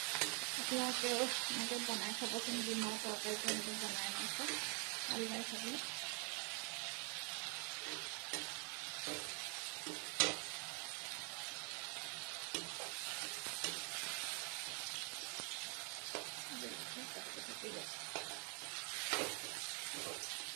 আপোনালোকেও এনেকৈ বনাই খাবচোন ডিমৰ তৰকাৰীটো এনেকৈ বনাই মাংস ভাল লাগে খাবলৈ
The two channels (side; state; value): left; quieter; 36.0 dB